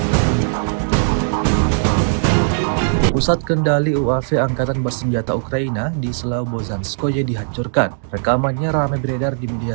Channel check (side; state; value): left; silent; digital silence